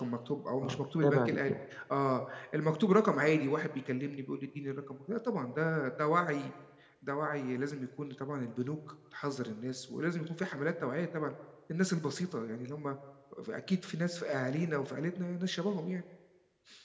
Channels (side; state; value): both; identical; correlation 1.00